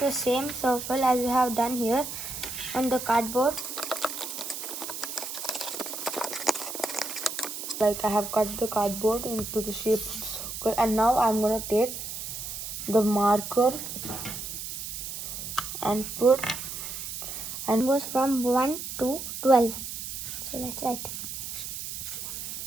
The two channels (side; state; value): right; noise; hiss, 7 dB below the sound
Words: the same circle as you have done here on the cardboard. Like I have cut the cardboard into the shape of the circle, and now I'm going to take the marker and put and goes from 1 to 12. So let's write.